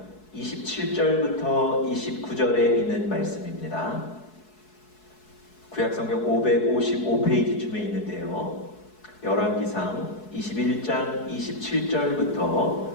27절부터 29절에 있는 말씀입니다. 구약 성경 555페이지쯤에 있는데요. 열왕기상 21장 27절부터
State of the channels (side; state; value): right; late; 4.7 ms